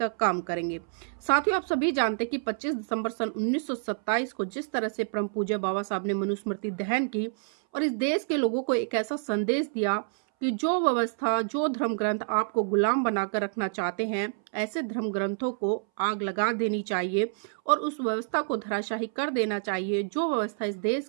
काम करेंगे। साथियों, आप सभी जानते हैं कि 25 दिसंबर सन 1927 को जिस तरह से परम पूज्य बाबा साहब ने मनुस्मृति दहन की और इस देश के लोगों को एक ऐसा संदेश दिया कि जो व्यवस्था, जो धर्म ग्रंथ आपको गुलाम बनाकर रखना चाहते हैं, ऐसे धर्म ग्रंथों को आग लगा देनी चाहिए और उस व्यवस्था को धराशाही कर देना चाहिए जो व्यवस्था इस देश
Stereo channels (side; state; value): left; silent; 59 dB below the other